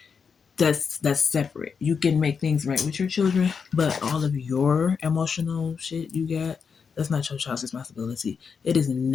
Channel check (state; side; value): quieter; right; 6.0 dB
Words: that's separate. You can make things right with your children, but all of your emotional shit you got, that's not your child's responsibility. It is